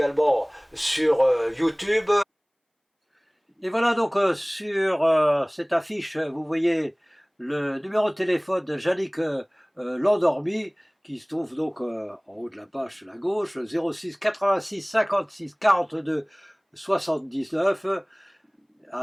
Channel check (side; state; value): both; identical; correlation 1.00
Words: sur YouTube. Et voilà donc sur cette affiche, vous voyez le numéro de téléphone de Yannick Landormy, qui se trouve donc en haut de la page sur la gauche, 06 86 56 42 79,